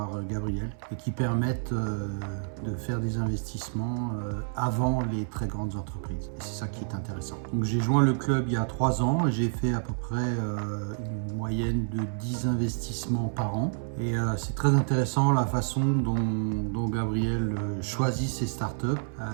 Gabriel et qui permettent de faire des investissements avant les très grandes entreprises. Et c'est ça qui est intéressant. Donc j'ai joint le club il y a 3 ans et j'ai fait à peu près une moyenne de 10 investissements par an. Et c'est très intéressant la façon dont Gabriel choisit ses startups.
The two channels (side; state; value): left; silent; 59 dB below the other